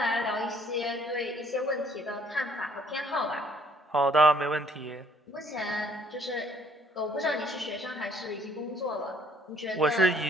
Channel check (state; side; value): normal; both; correlation 0.62